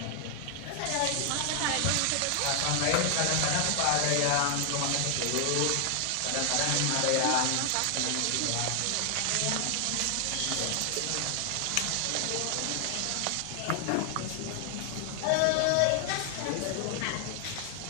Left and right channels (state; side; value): different; both; correlation 0.00